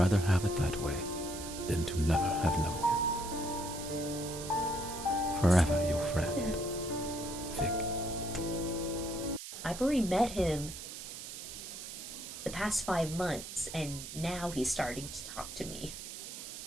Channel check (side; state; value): right; noise; hiss, 10 dB below the sound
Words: have it that way than to never have known you. Forever your friend, Fig. I've already met him the past 5 months, and now he's starting to talk to me.